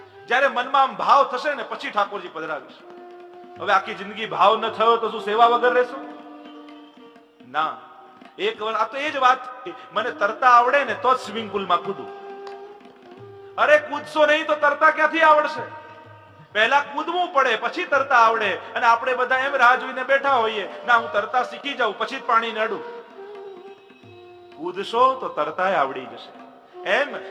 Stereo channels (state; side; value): identical; both; correlation 1.00